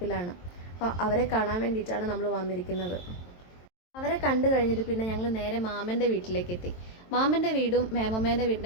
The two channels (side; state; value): right; late; 23 ms